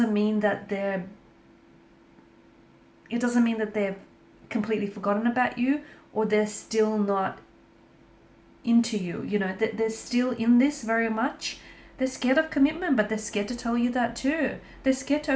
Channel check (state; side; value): identical; both; correlation 1.00